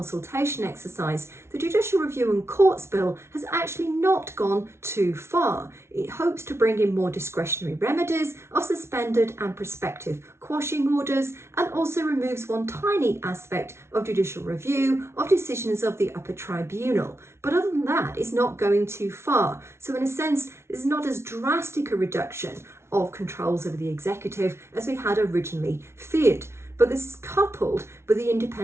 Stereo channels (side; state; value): left; late; 0.13 ms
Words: exercise, the Judicial Review and Courts Bill has actually not gone too far. It hopes to bring in more discretionary remedies of suspended and prospective quashing orders, and also removes one tiny aspect of judicial review of decisions of the upper tribunal. But other than that, it's not going too far. So in a sense, it's not as drastic a reduction of controls over the executive as we had originally feared. But this is coupled with the